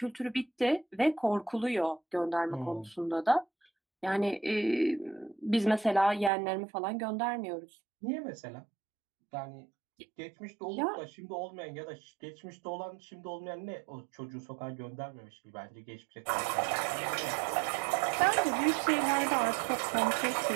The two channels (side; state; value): left; drops out; at 6.3 s